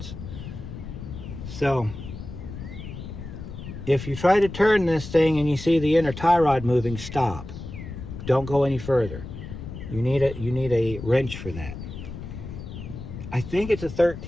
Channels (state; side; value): noise; left; rumble, 10 dB below the sound